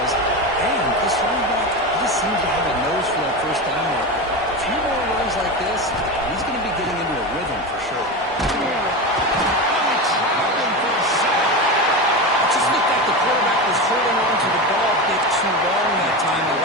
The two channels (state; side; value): normal; both; correlation 0.21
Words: And this running back just seems to have a nose for that 1st down mark. A few more runs like this, he's going to be getting into a rhythm for sure. It just looked like the quarterback was holding on to the ball a bit too long that time,